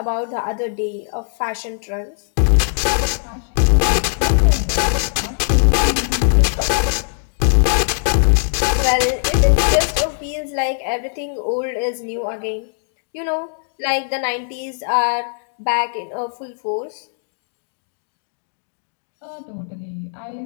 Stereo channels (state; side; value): silent; right; digital silence